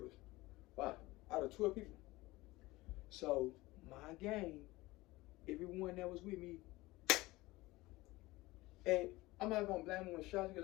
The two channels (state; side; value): quieter; right; 20.0 dB